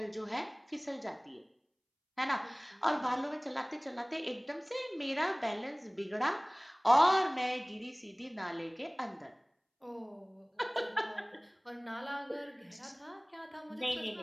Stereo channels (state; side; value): identical; both; correlation 1.00